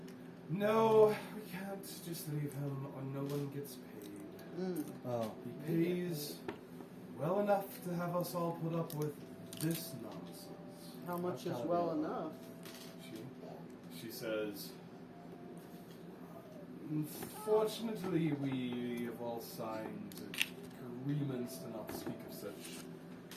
"No, we can't just leave him, or no one gets paid. Oh, He pays well enough to have us all put up with this nonsense." How much That's is gotta well be- enough? She says, "Unfortunately, we have all signed agreements to not speak of such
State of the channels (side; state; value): both; identical; correlation 1.00